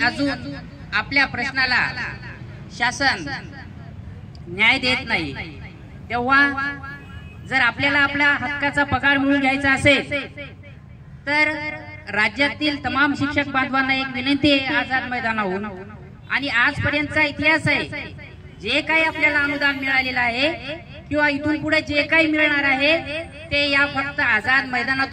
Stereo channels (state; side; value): identical; both; correlation 1.00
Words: आपल्या प्रश्नाला शासन न्याय देत नाही। तेव्हा जर आपल्याला आपल्या हक्काचा पगार मिळवून घ्यायचा असेल तर राज्यातील तमाम शिक्षक बांधवांना एक विनंती आहे आझाद मैदानाहून, आणि आजपर्यंतचा इतिहास आहे, जे काही आपल्याला अनुदान मिळालेलं आहे किंवा इथून पुढे जे काही मिळणार आहे ते या फक्त आझाद